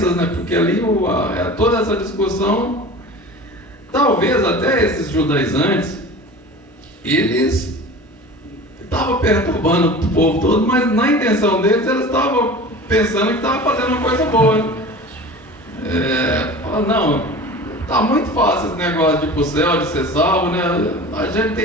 né, porque ali toda essa discussão, talvez até esses judaizantes, eles estavam perturbando o povo todo, mas na intenção deles, eles estavam pensando que estavam fazendo uma coisa boa. Não, tá muito fácil esse negócio de ir pro céu, de ser salvo, né? A gente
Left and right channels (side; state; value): both; normal; correlation 0.37